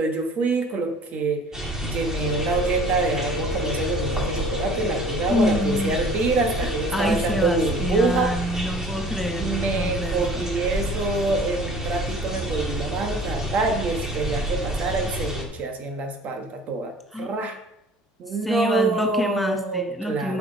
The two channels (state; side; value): normal; both; correlation 0.49